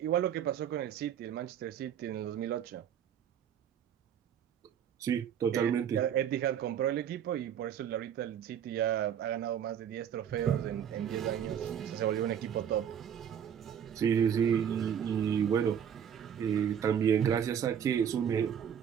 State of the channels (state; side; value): quieter; left; 8.8 dB